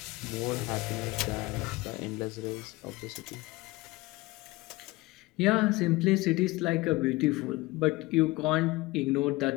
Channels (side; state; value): right; quieter; 21.0 dB